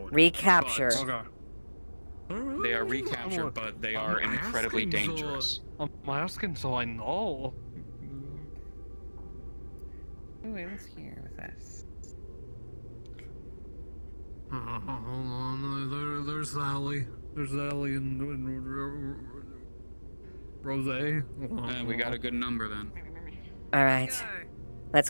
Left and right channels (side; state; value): both; inverted; correlation -1.00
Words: Recapture. They are recaptured, but they are incredibly dangerous. I'm asking so I know. Who is here with us? Hold on, there's Sally. There's Sally and Rose. We got a good number then. All right. Let's